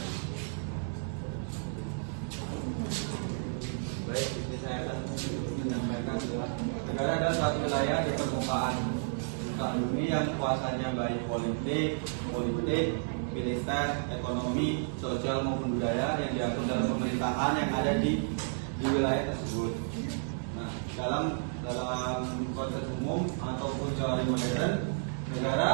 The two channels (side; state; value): left; silent; digital silence